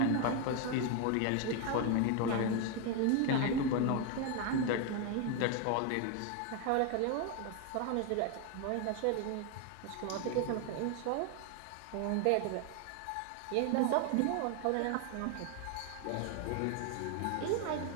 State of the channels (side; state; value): both; different; correlation 0.01